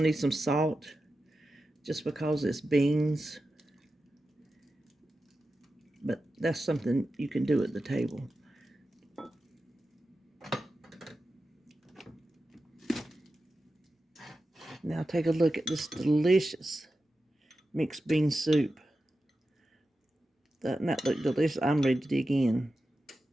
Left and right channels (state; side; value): normal; both; correlation 0.92